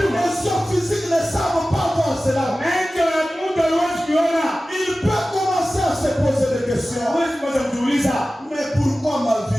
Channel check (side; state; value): both; normal; correlation 0.96